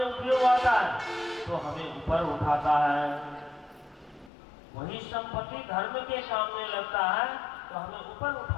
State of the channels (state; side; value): drops out; right; at 4.3 s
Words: उपयोग आता है तो हमें ऊपर उठाता है। वही संपत्ति धर्म के काम में लगता है तो हमें ऊपर